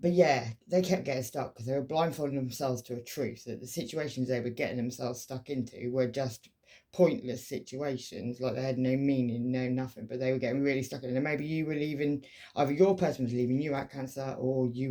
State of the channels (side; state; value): both; identical; correlation 1.00